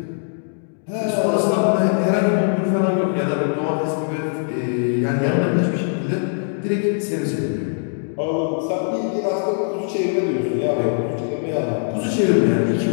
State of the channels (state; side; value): silent; right; 65 dB below the other